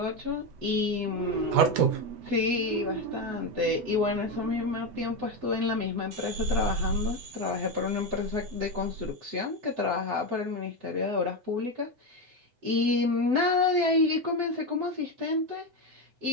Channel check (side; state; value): left; late; 7.9 ms